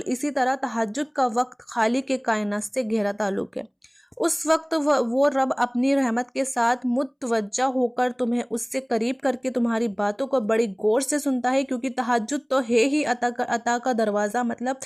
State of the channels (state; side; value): identical; both; correlation 1.00